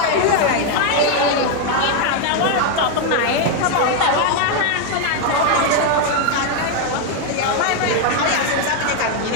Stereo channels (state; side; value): different; both; correlation 0.01